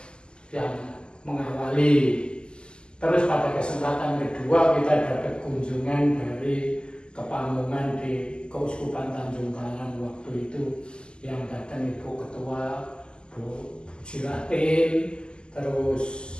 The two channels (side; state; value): right; late; 0.048 ms